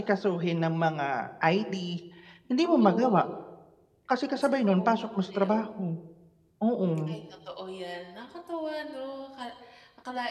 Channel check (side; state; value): both; identical; correlation 1.00